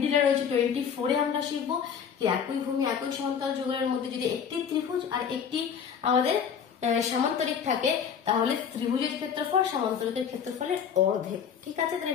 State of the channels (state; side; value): quieter; right; 7.4 dB